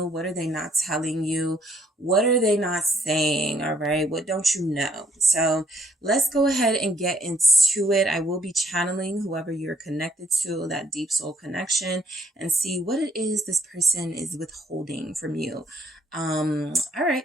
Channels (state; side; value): normal; both; correlation 0.68